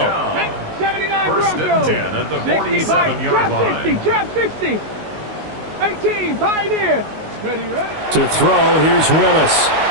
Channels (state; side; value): late; left; 19 ms